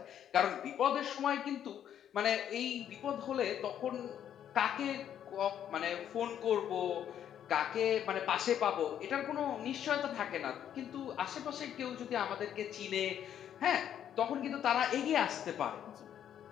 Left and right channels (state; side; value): quieter; right; 9.8 dB